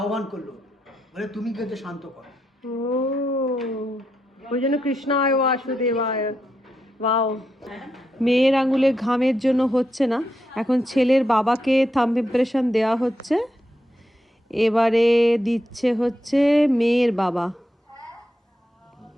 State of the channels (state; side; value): normal; both; correlation 0.83